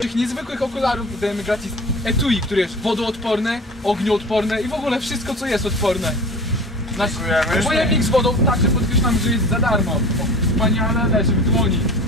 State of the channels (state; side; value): normal; both; correlation 0.38